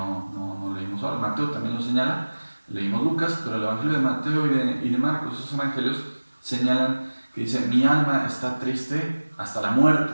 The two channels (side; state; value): both; inverted; correlation -1.00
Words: leímos ahora, Mateo también lo señala, leímos Lucas, pero el Evangelio de Mateo y de Marcos, esos evangelios señalan que dice: mi alma está triste hasta la